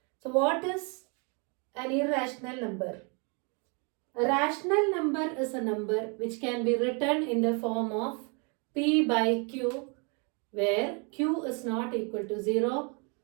So what is an irrational number? A rational number is a number which can be written in the form of p by q, where q is not equal to 0.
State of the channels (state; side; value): quieter; left; 34.7 dB